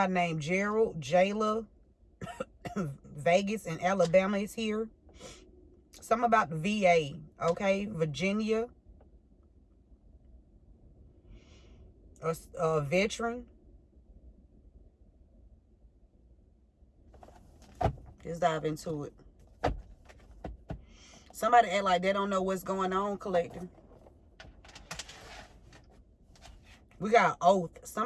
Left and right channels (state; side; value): identical; both; correlation 1.00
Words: named Gerald, Jayla, Vegas, and Alabama is here. Something about the VA, okay? Virginia. A veteran. Let's dive into it. Somebody act like they don't know what's going on, collective. We got oath.